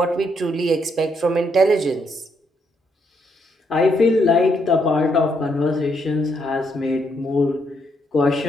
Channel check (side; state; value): both; normal; correlation 0.76